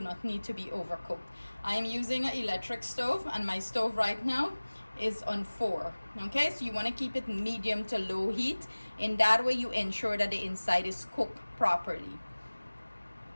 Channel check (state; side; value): inverted; both; correlation -1.00